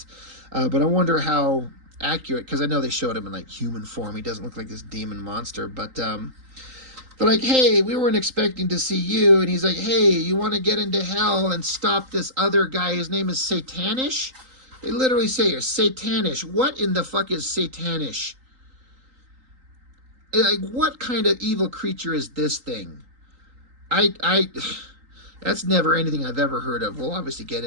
But I wonder how accurate, because I know they showed him in like human form. He doesn't look like this demon monster. But they're like, hey, we weren't expecting to see you. And he's like, hey, you want to get into hell and stop this other guy? His name is Satanish. They literally say here, Satanish. What in the fuck is Satanish? Like, what kind of evil creature is this thing? That's never anything I've ever heard of. We'll obviously get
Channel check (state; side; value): late; left; 3.8 ms